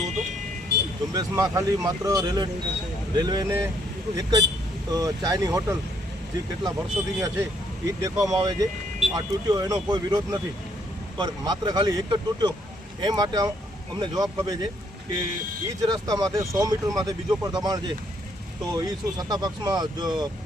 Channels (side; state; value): both; normal; correlation 0.70